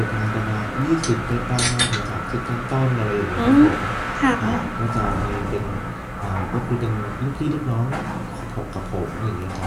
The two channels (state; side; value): identical; both; correlation 1.00